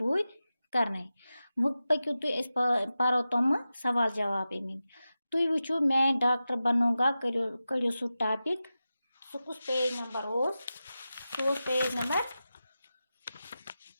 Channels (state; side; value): inverted; both; correlation -0.93